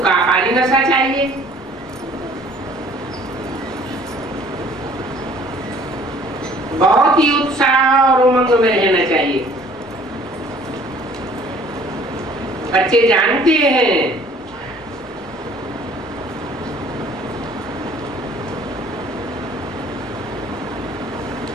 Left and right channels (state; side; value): normal; both; correlation 0.54